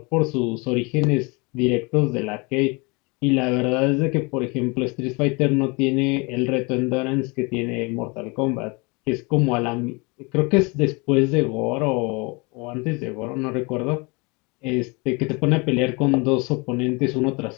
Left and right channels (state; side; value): quieter; right; 28.6 dB